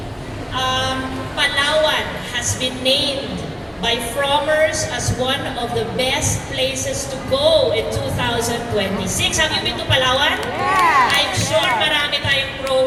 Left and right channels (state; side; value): identical; both; correlation 1.00